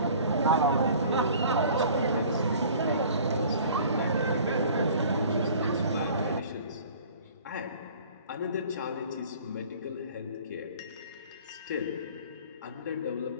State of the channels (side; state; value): both; inverted; correlation -0.48